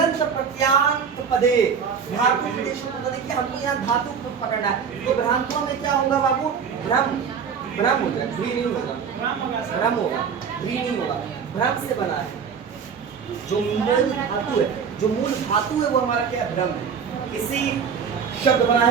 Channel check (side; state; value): left; quieter; 6.6 dB